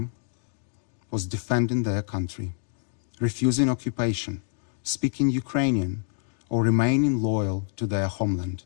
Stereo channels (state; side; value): silent; right; digital silence